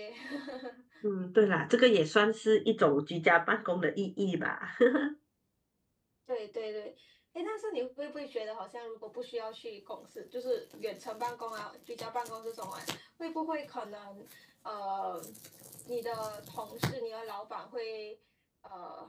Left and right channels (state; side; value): identical; both; correlation 1.00